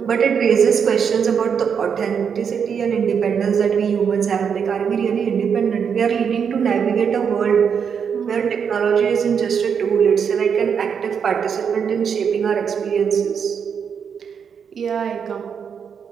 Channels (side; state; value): left; quieter; 7.0 dB